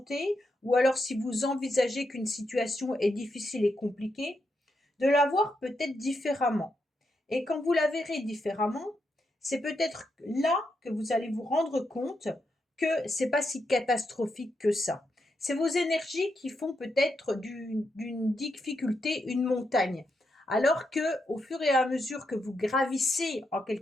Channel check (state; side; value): normal; both; correlation 0.83